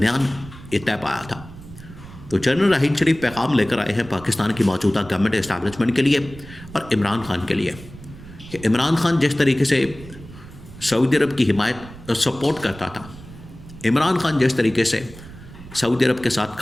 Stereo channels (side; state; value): right; noise; rumble, 17 dB below the sound